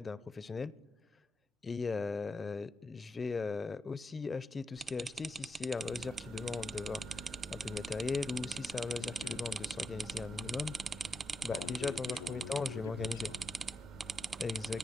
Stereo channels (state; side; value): normal; both; correlation 0.84